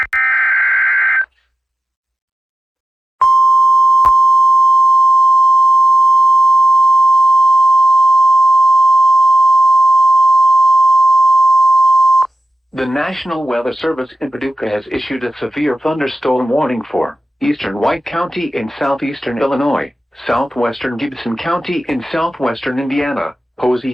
The National Weather Service in Paducah has issued a severe thunderstorm warning for eastern White County in southeastern Illinois, southwestern Gibson County in southwestern Indiana,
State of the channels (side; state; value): both; normal; correlation 0.94